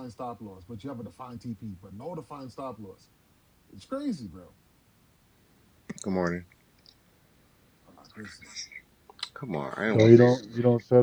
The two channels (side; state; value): both; identical; correlation 1.00